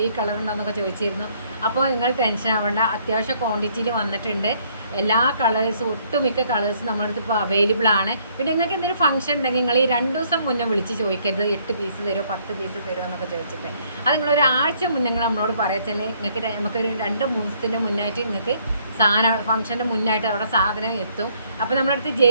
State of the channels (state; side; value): inverted; both; correlation -0.65